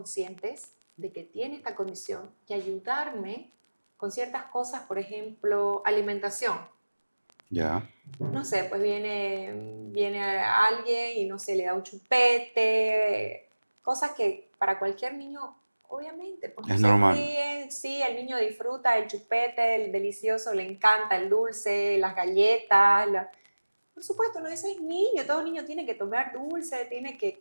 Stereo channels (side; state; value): both; inverted; correlation -1.00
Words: de que tiene esta condición y ayudarme con ciertas cosas, por ejemplo, alimentación. Ya. No sé, pues viene alguien y no sé, le da un chupete, cosas que para cualquier niño, obviamente, pues no Es se normal. ríen, sí, el niño disfruta el chupete, el delicioso, le encanta el dulce, las galletas, por supuesto, no, ese es niño, todo niño tiene que tomar dulce, tiene